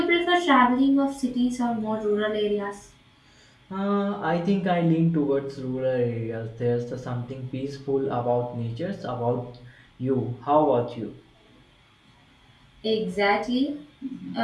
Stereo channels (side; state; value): both; identical; correlation 1.00